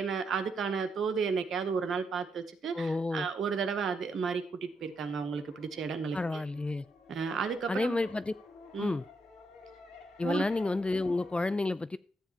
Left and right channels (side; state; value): both; normal; correlation 0.79